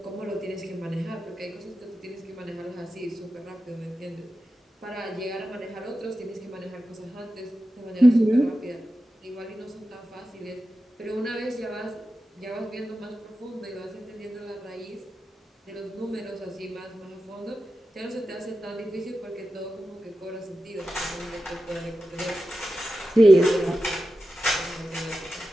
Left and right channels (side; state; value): both; normal; correlation 0.92